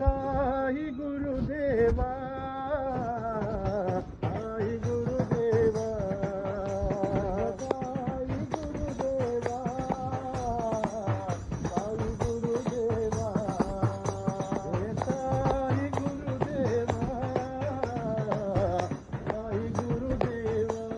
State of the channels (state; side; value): identical; both; correlation 1.00